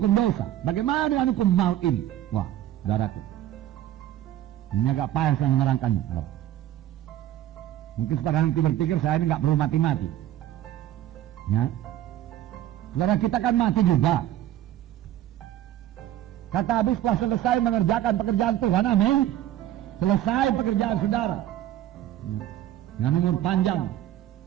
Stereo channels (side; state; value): left; quieter; 12.7 dB